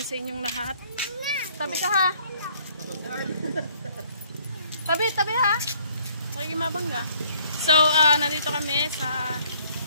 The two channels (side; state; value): both; inverted; correlation -0.62